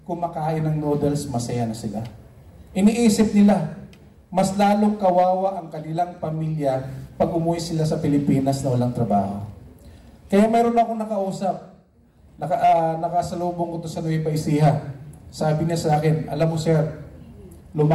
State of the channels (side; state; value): both; identical; correlation 1.00